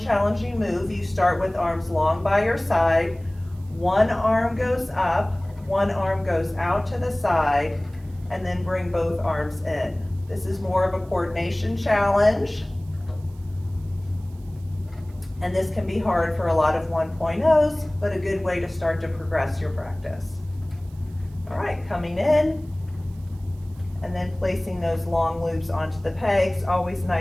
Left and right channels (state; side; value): noise; right; hiss, 30 dB below the sound